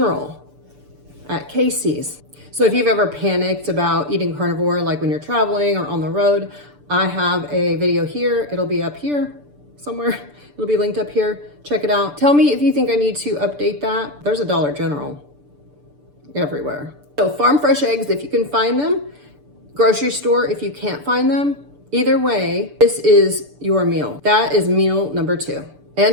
at Casey's. So if you've ever panicked about eating carnivore, like when you're traveling or on the road, I have a video here. It'll be up here somewhere. It'll be linked up here. Check it out. Tell me if you think I need to update that. There's a Dollar General everywhere. So farm fresh eggs, if you can find them. Grocery store, if you can't find them. Either way, this is your meal. That is meal number 2.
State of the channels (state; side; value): late; left; 6.8 ms